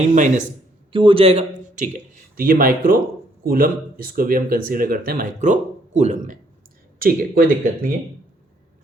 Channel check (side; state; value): both; normal; correlation 0.68